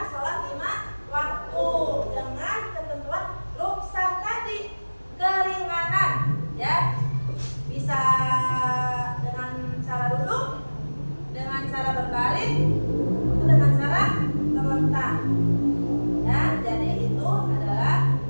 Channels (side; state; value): both; inverted; correlation -1.00